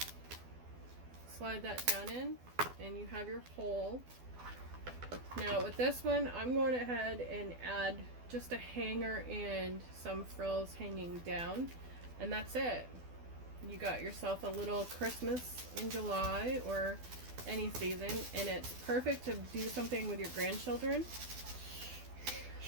Slide that down in, and you have your hole. Now with this one, I'm going ahead and add just a hanger and some frills hanging down, and that's it. You got yourself a little Christmas in July or any season, and it's perfect to do something with your grandchildren.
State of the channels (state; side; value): late; left; 12 ms